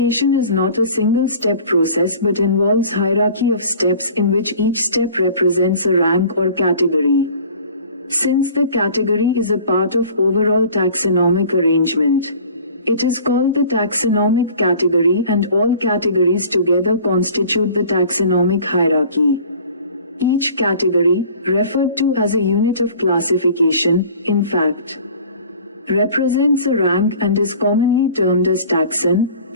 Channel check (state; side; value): inverted; both; correlation -0.47